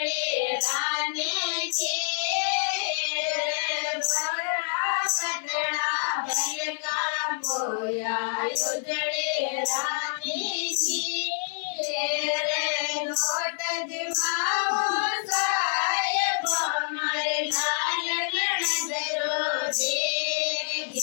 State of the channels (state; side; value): silent; right; 60 dB below the other